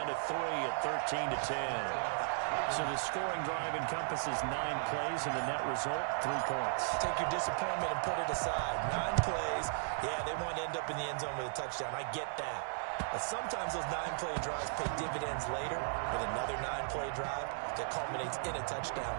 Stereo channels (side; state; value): left; silent; digital silence